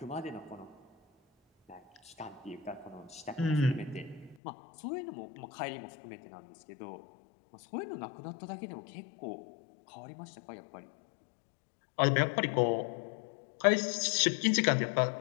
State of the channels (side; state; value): right; drops out; at 4.4 s